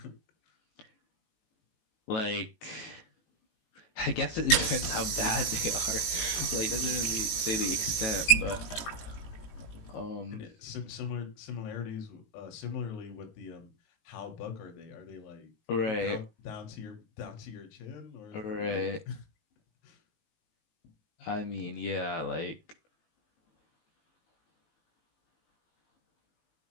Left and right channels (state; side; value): late; right; 19 ms